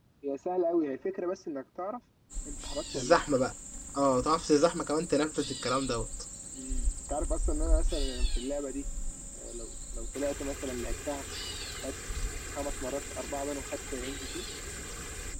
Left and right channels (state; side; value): identical; both; correlation 1.00